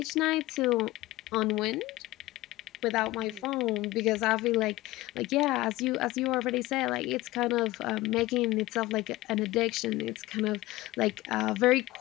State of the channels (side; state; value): right; quieter; 18.5 dB